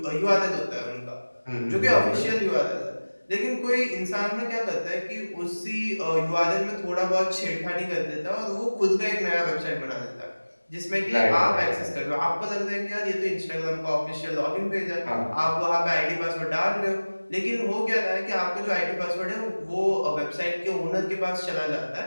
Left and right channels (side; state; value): both; inverted; correlation -1.00